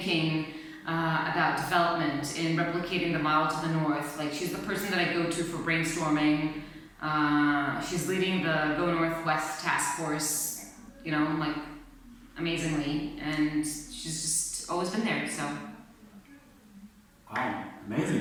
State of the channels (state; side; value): identical; both; correlation 1.00